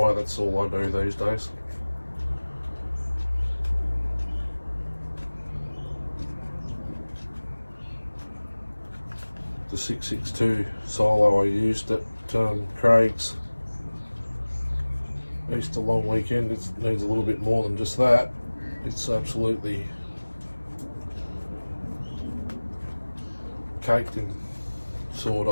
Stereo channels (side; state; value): both; inverted; correlation -1.00